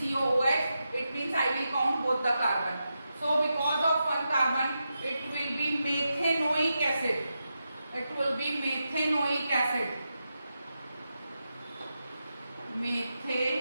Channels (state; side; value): inverted; both; correlation -0.88